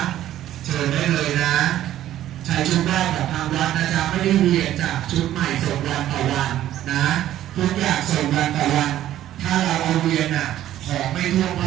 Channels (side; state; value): left; quieter; 12.7 dB